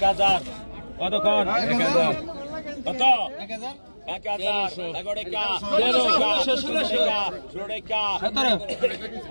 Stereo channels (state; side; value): inverted; both; correlation -1.00